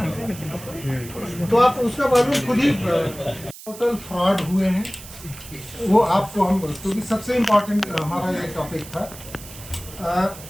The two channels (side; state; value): right; noise; hiss, 16 dB below the sound